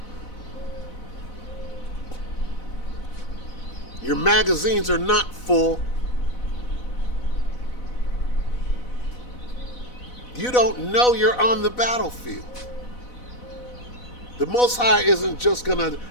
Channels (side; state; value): right; late; 4.0 ms